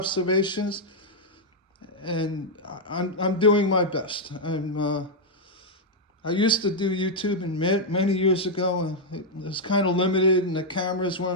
and I'm doing my best. I used to do YouTube many years ago, and it was kind of limited, and the cameras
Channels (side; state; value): both; normal; correlation -0.03